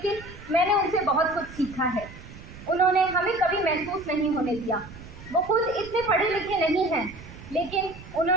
मैंने उनसे बहुत कुछ सीखा है। उन्होंने हमें कभी महसूस नहीं होने दिया। वो खुद इतने पढ़े लिखे नहीं हैं, लेकिन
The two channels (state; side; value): noise; right; rumble, 16 dB below the sound